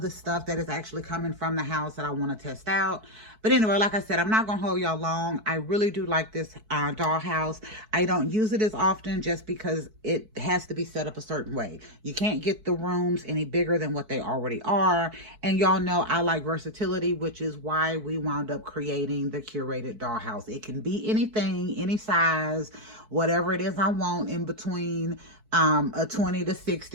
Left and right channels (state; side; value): late; left; 4.6 ms